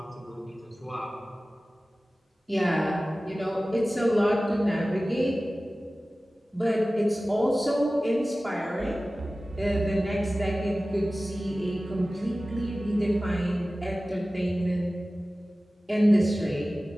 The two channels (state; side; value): normal; both; correlation 0.97